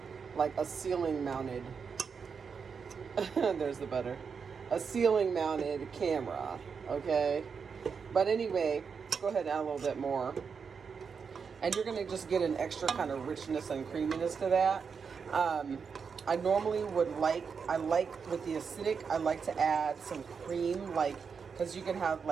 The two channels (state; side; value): quieter; left; 6.0 dB